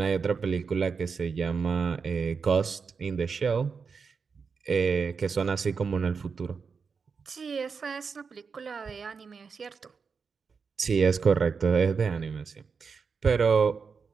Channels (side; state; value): left; quieter; 5.5 dB